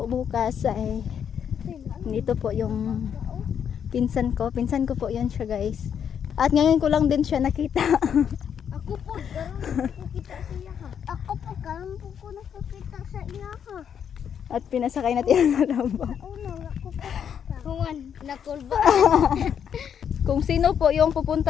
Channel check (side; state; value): right; quieter; 8.2 dB